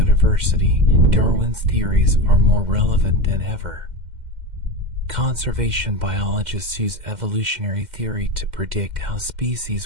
Darwin's theories are more relevant than ever. Conservation biologists use evolutionary theory to predict how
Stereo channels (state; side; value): late; left; 2.1 ms